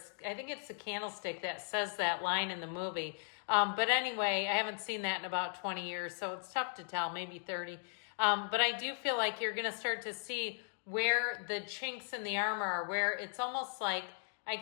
think it's the candlestick that says that line in the movie. But anyway, I haven't seen that in about 20 years, so it's tough to tell, maybe 30. But I do feel like you're going to start to see where the chinks in the armor are, where it's almost like I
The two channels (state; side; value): silent; right; digital silence